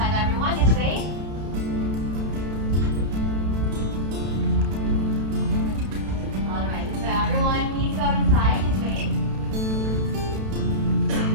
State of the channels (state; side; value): late; left; 32 ms